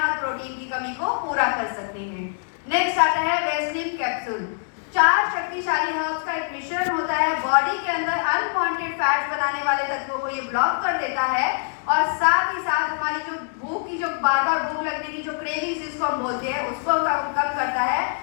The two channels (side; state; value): right; silent; digital silence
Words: प्रोटीन की कमी को पूरा कर सकते हैं। नेक्स्ट आता है वेस्लिन कैप्सूल। 4 शक्तिशाली हर्ब्स का एक मिश्रण होता है, बॉडी के अंदर अनवांटेड फैट्स बनाने वाले तत्वों को ये ब्लॉक कर देता है और साथ ही साथ हमारी जो भूख की, जो बार बार भूख लगने की जो क्रेविंग्स जिसको हम बोलते हैं, उसको कम करता है,